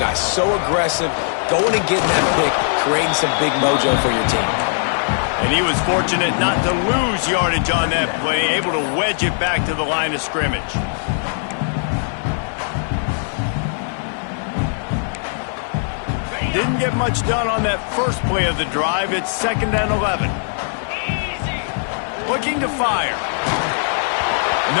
So aggressive, going and getting that pick, creating some big mojo for your team. And he was fortunate not to lose yardage on that play, able to wedge it back to the line of scrimmage. Didn't get much done on that first play of the drive. It's 2nd and 11. Looking to fire.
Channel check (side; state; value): right; silent; 57 dB below the other